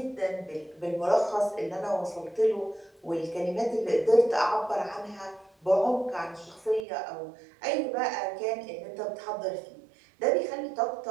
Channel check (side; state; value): left; drops out; at 6.9 s